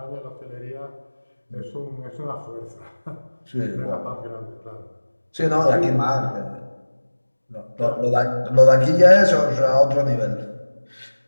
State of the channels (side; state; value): both; inverted; correlation -1.00